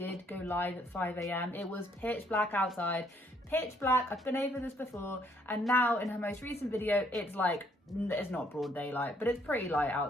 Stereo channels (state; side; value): normal; both; correlation 0.67